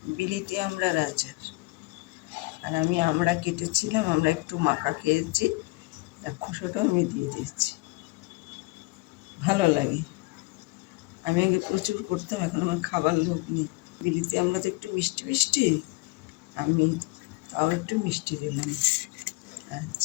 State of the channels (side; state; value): right; quieter; 24.0 dB